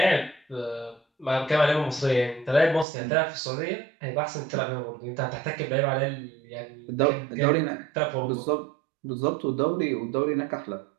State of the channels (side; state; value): left; drops out; at 2.9 s